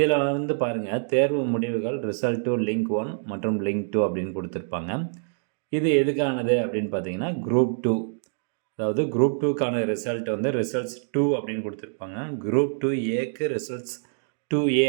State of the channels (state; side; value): silent; left; digital silence